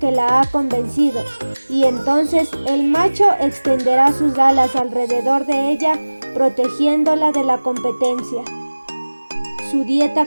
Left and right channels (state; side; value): inverted; both; correlation -1.00